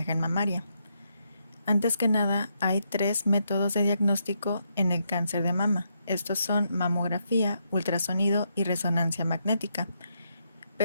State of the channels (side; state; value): both; inverted; correlation -0.79